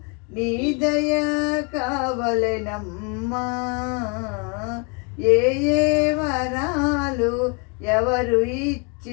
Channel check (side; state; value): right; quieter; 34.2 dB